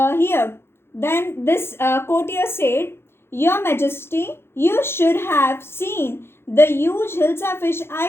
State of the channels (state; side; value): late; right; 0.12 ms